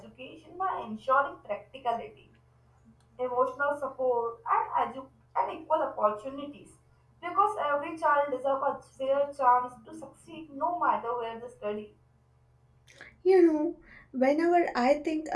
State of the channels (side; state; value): both; identical; correlation 1.00